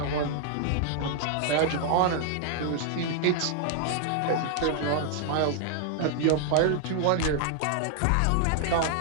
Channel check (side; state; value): both; different; correlation 0.00